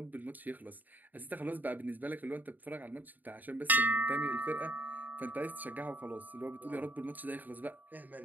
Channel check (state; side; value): late; left; 0.085 ms